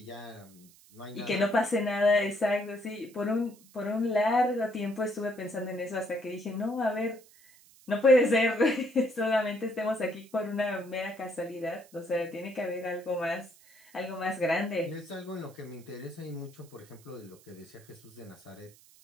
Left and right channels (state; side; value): noise; right; hiss, 26 dB below the sound